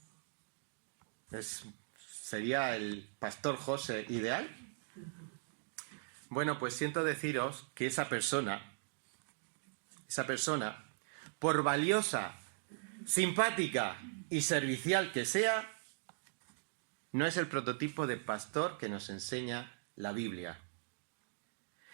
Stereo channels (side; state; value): left; silent; digital silence